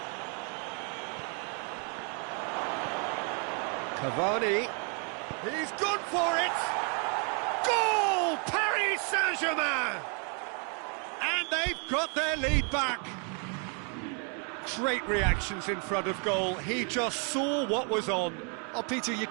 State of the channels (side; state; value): left; quieter; 38.4 dB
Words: Cavani. He's gone for it. Goal! Paris Saint-Germain! And they've got their lead back. Great reactions in front of goal. He just saw what was on. Oh, Peter, you